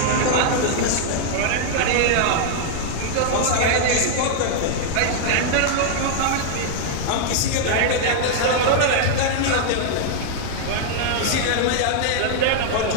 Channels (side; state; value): both; different; correlation -0.01